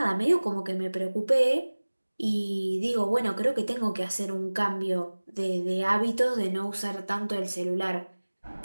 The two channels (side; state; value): both; inverted; correlation -1.00